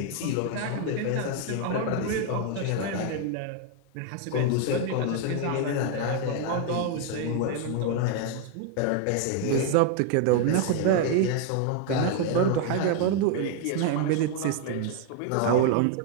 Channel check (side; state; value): both; different; correlation 0.00